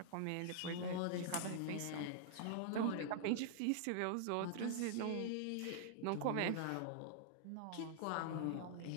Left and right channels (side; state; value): both; different; correlation -0.01